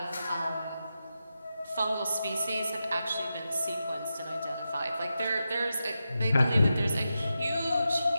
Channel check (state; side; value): inverted; both; correlation -0.90